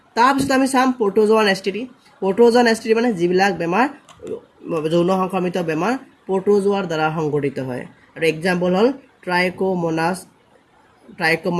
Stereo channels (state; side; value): identical; both; correlation 1.00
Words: তাৰপিছত আমি চাম প্ৰটোজোৱান STD। প্ৰটোজোৱান STD মানে যিবিলাক বেমাৰ যৌন সংক্ৰমিত বেমাৰ প্ৰটোজোৱাৰ দ্বাৰা সংঘটিত হয়, আৰু এক্সাম্পল হ'ল